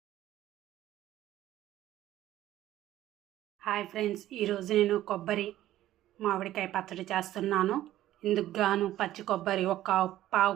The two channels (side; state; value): left; quieter; 13.8 dB